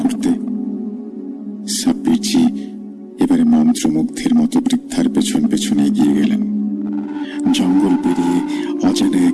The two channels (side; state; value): both; identical; correlation 1.00